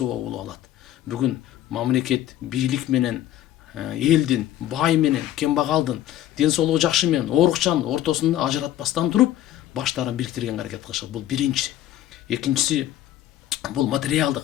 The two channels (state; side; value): quieter; right; 12.7 dB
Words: болуп алат. Бүгүн мамлекет бийлик менен элдин, бай менен кембагалдын, ден соолугу жакшы менен оорукчанын ортосунда ажыратпастан туруп баштарын бириктирген аракет кылышат. Бул биринчи. Экинчиси бул